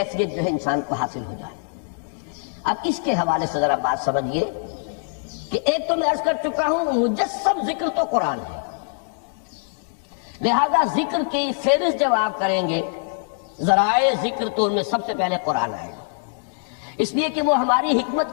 جو ہے انسان کو حاصل ہو جائے۔ اب اس کے حوالے سے ذرا بات سمجھیے کہ ایک تو میں عرض کر چکا ہوں مجسم ذکر تو قرآن ہے، لہذا ذکر کی فہرست جب آپ کریں گے ذرائع ذکر تو ان میں سب سے پہلے قرآن آئے گا، اس لیے کہ وہ ہماری حکمت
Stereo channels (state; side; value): silent; right; digital silence